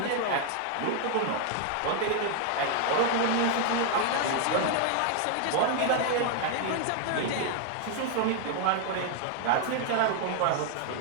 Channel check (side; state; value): both; different; correlation 0.00